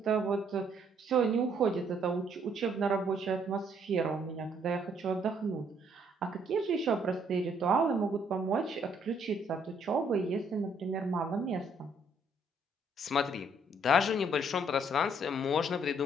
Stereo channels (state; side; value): normal; both; correlation 0.67